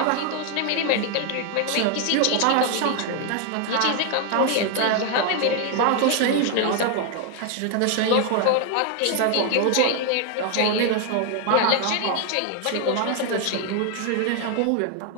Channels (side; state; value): both; different; correlation 0.01